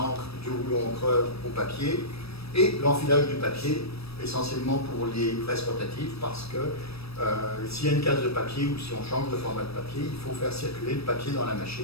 du rouleau encreur au papier. Et l'enfilage du papier, essentiellement pour les presses rotatives, parce que s'il y a une case de papier ou si on change de format de papier, il faut faire circuler le papier dans la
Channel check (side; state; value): right; late; 0.78 ms